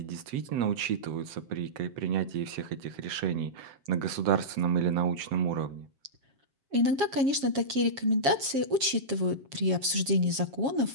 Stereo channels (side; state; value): left; late; 7.3 ms